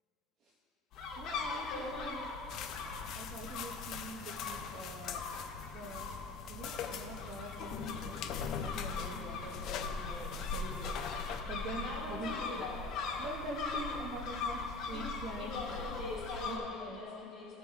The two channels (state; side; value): quieter; right; 3.3 dB